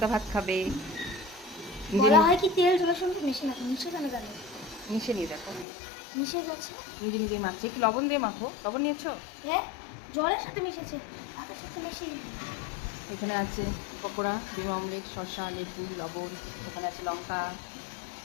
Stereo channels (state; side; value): drops out; right; at 5.7 s